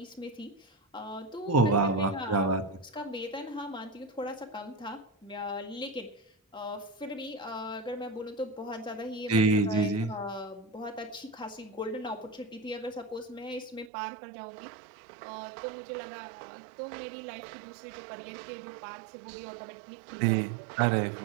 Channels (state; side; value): drops out; left; at 13.9 s